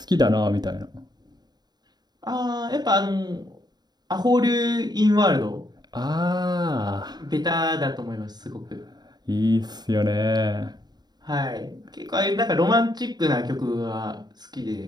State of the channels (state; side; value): late; left; 0.20 ms